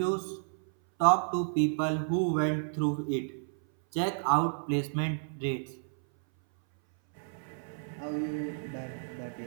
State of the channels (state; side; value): silent; left; 57 dB below the other